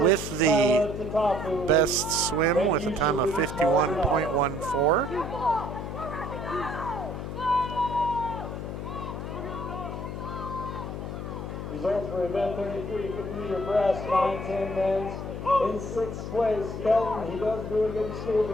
the best swim with a time of 51.14. Results for event 33, 50-meter breast, 9-10 men's. In 6th place, Kelton. He does really good in school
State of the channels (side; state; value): left; noise; hum, 6 dB below the sound